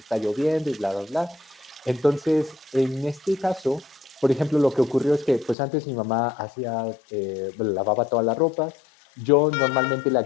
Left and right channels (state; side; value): drops out; right; at 5.6 s